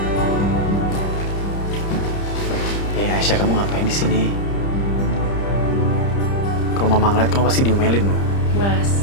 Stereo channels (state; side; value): late; right; 30 ms